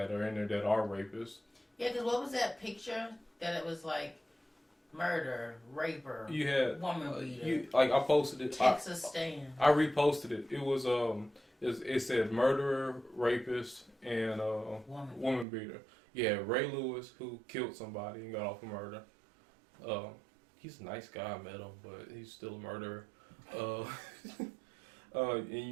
are in there that are rapists. Yeah, because what was that picture that it was like murder, raper, You had woman beater, I posted it. Texas stand. I reposted it. It was it said murderer, rapist, and woman beater. Yeah, Ray Lewis who killed somebody and got off of murder. He's a nice guy. I met him, but he's still a murderer. And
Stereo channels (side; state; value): left; drops out; at 15.5 s